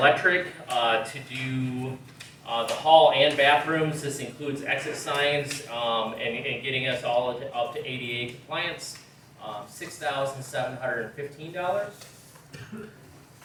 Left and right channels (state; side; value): identical; both; correlation 1.00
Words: to do, the hall and bathrooms. This includes exit signs, and getting us all up to ADA compliance. $6,715.